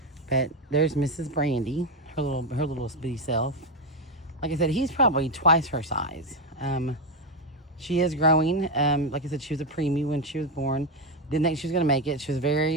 But there's Mrs. Brandy, her little bitty self. Like I said, he's probably twice her size. She is growing. Like I said, she was a preemie when she was born. Didn't think she was going to make it. She was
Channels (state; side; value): normal; both; correlation 0.09